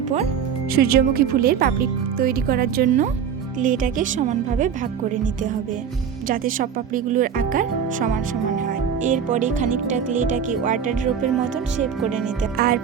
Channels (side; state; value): left; quieter; 7.6 dB